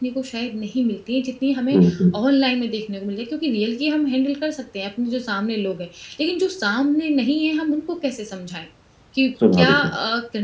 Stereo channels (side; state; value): both; identical; correlation 1.00